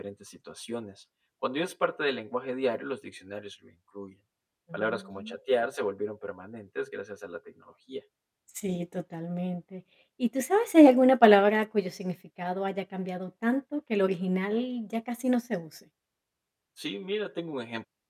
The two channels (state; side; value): identical; both; correlation 1.00